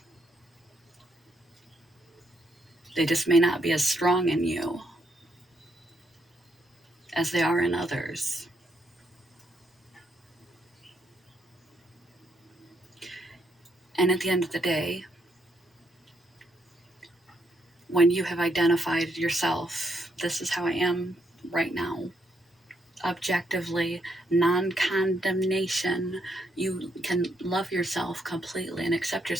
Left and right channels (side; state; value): both; normal; correlation 0.76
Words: They just may not be as strong in you as they are in others. And at the end of the day, when you have identified yourself, this is how I am right now, objectively, non-condemnation, you can love yourself completely and accept